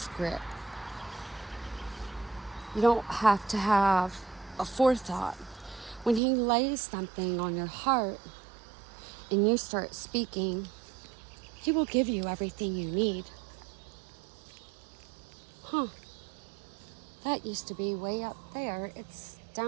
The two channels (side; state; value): left; drops out; at 6.2 s